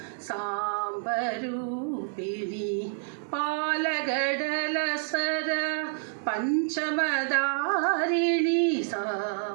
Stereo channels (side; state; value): left; silent; digital silence